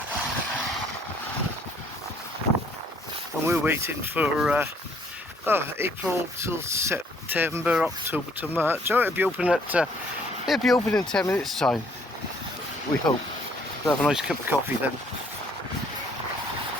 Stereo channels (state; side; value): normal; both; correlation 0.63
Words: And we're waiting for April till September, October to March. Oh, it'll be open in 10 minutes time, we hope. We'll have a nice cup of coffee then.